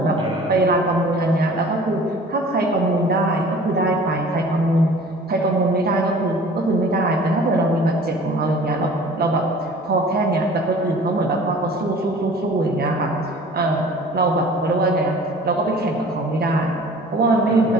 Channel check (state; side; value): normal; both; correlation 0.46